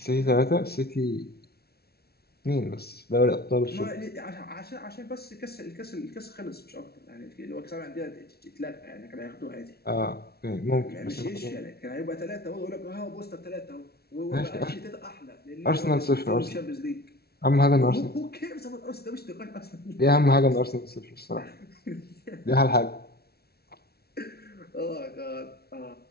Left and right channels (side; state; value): right; late; 0.45 ms